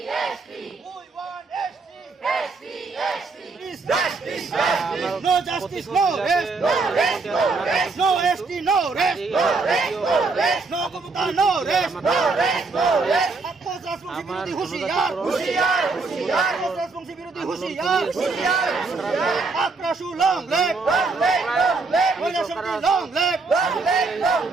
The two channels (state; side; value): quieter; left; 4.0 dB